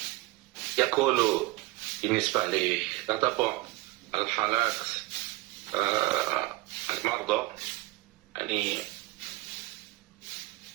يقول بالنسبة لتتبع الحالات المرضى، يعني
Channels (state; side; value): quieter; left; 19.5 dB